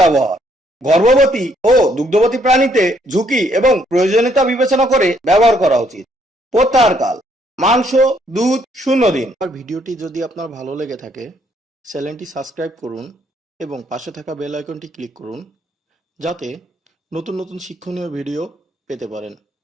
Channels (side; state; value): both; normal; correlation 0.69